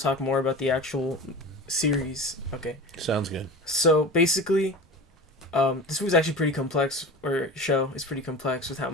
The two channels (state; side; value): normal; both; correlation 0.33